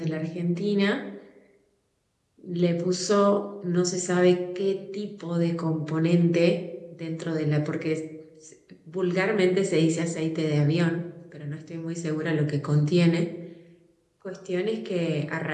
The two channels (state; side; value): identical; both; correlation 1.00